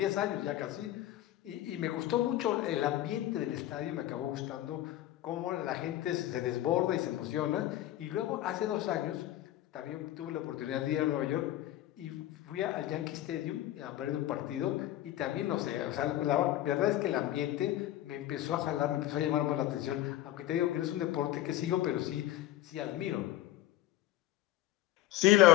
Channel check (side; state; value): right; quieter; 14.2 dB